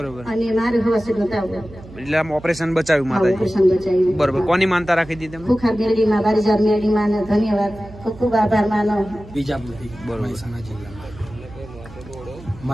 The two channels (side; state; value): right; noise; hum, 18 dB below the sound